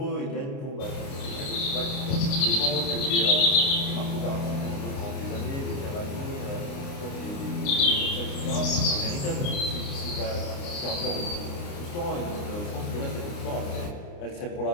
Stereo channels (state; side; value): late; right; 29 ms